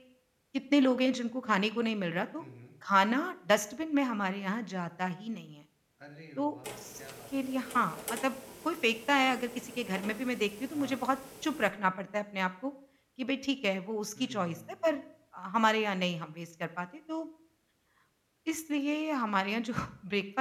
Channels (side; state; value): both; identical; correlation 1.00